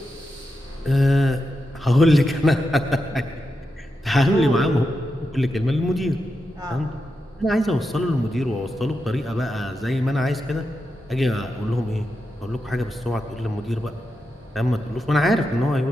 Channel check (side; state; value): both; normal; correlation 0.87